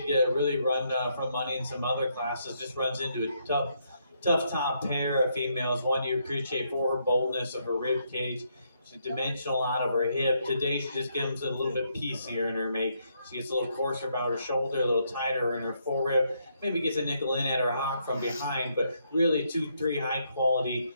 really run from money in some other classes, just runs into a tough top pair of females. One you appreciate for her boldness of her rib cage. She's dimensional out of her hip. Today she just gives it a little bit piecier in her make. She gets a little coarser about her shoulder, a little tighter in her forerib. Maybe gets a nickel in at her hock from behind, but really 2-3 high quality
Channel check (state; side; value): inverted; both; correlation -0.75